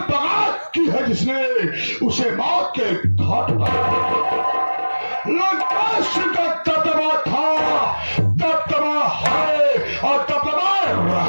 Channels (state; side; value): inverted; both; correlation -1.00